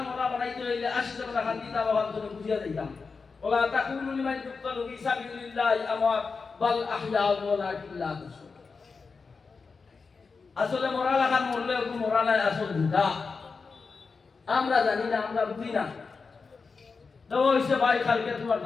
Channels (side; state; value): right; quieter; 4.7 dB